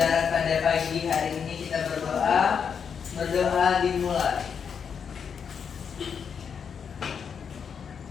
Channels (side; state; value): right; quieter; 6.9 dB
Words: pada pagi hari ini kita berdoa. Berdoa dimulai.